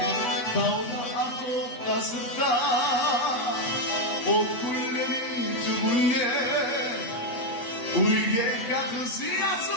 dağda atıp kasıpta ot kullerin tübüne uyge kakısı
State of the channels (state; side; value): late; right; 8.1 ms